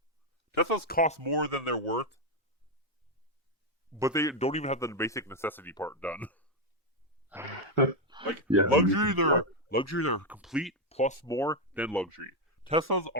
Teslas cost more than they're worth, but they don't even have the basic necessity part done. Like Yeah, exactly. luxuries are complete plus more than luxury. Teslas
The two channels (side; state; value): both; normal; correlation 0.04